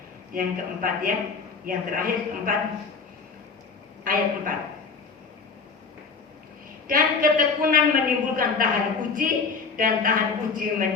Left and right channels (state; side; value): quieter; right; 4.9 dB